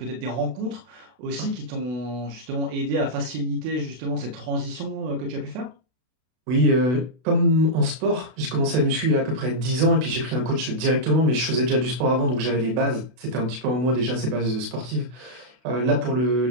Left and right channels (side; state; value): left; late; 32 ms